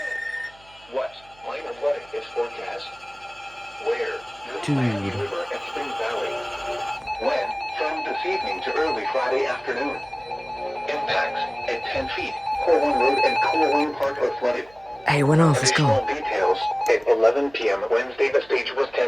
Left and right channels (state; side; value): noise; right; hum, 27 dB below the sound